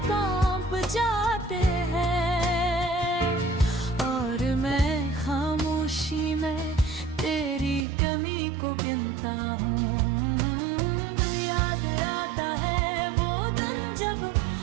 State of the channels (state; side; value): drops out; left; at 7.9 s